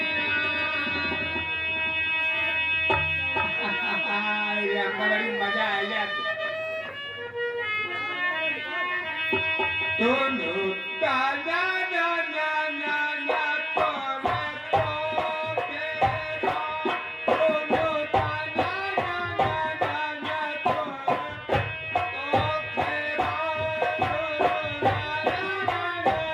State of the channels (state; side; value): identical; both; correlation 1.00